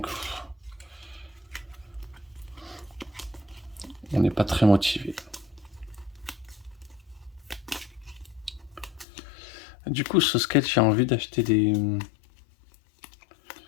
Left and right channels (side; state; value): right; drops out; at 9.1 s